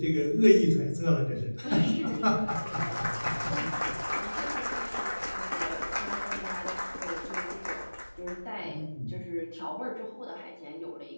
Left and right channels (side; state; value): both; inverted; correlation -1.00